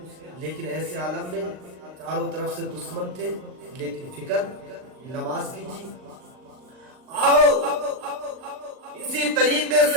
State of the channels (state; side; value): late; left; 39 ms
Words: لیکن ایسے عالم میں چاروں طرف سے دشمن تھے، لیکن فکر نماز کی تھی. آؤ اسی طریقے